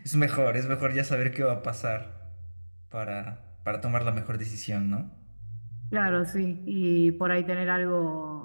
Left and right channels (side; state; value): both; inverted; correlation -1.00